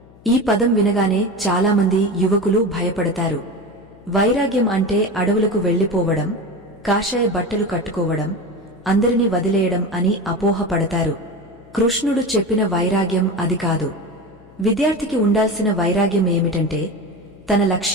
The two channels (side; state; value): left; noise; hum, 25 dB below the sound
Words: ఈ పదం వినగానే చాలామంది యువకులు భయపడతారు. వైరాగ్యం అంటే అడవులకు వెళ్లిపోవడం, కాషాయ బట్టలు కట్టుకోవడం, అందరినీ వదిలేయడం అని అపోహపడతారు. కృష్ణుడు చెప్పిన వైరాగ్యం అది కాదు. విద్యార్థికి ఉండాల్సిన వైరాగ్యం ఏమిటంటే తన